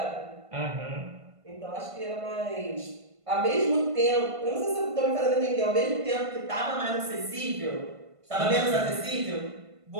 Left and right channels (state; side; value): late; left; 1.5 ms